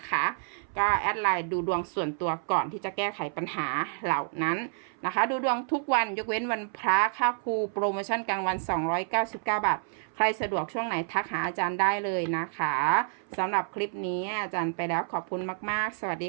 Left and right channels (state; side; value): silent; left; 59 dB below the other